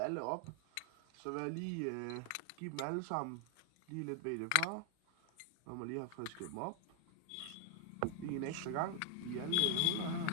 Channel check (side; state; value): both; different; correlation 0.00